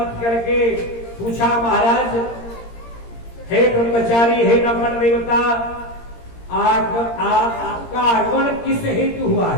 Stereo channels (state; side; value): late; right; 17 ms